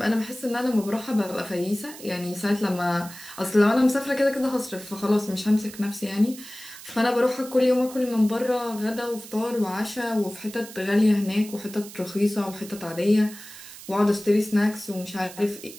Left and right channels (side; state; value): right; noise; hiss, 16 dB below the sound